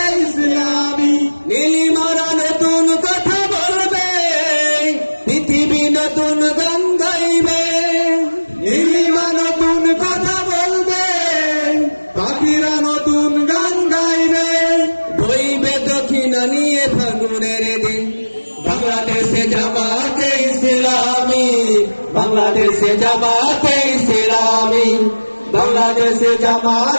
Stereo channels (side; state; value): both; inverted; correlation -1.00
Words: ইসলামী। নীলিমারা নতুন কথা বলবে, পৃথিবী নতুন গান গাইবে, নীলিমা নতুন কথা বলবে, পাখিরা নতুন গান গাইবে, বইবে দক্ষিণা নিয়ে ফাগুনের দিন। বাংলাদেশে জামাতে ইসলামী, বাংলাদেশে জামাতে ইসলামী, বাংলাদেশে